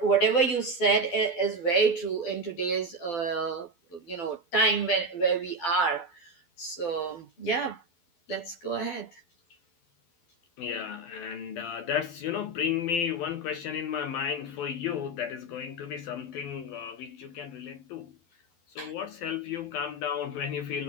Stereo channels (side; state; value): right; late; 12 ms